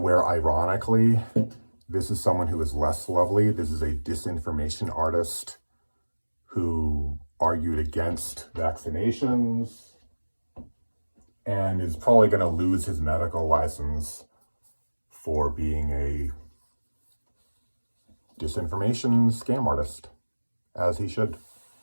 ironically. This is someone who is less lovely. This is a disinformation artist who argued against vaccinations and is probably going to lose his medical license for being a disinformation scam artist, as he should.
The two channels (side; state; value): both; inverted; correlation -1.00